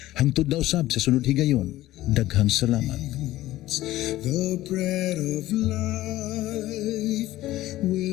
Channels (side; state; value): right; quieter; 15.8 dB